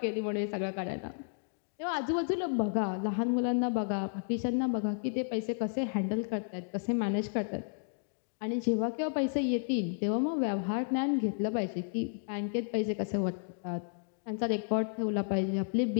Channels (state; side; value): silent; right; digital silence